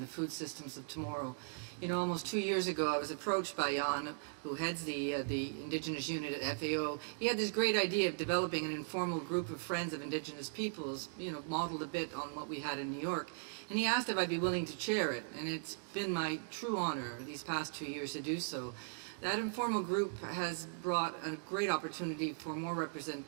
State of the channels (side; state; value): left; silent; digital silence